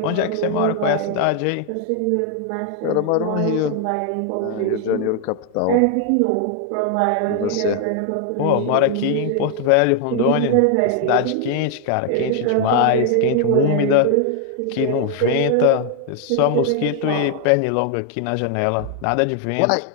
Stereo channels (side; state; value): both; different; correlation 0.00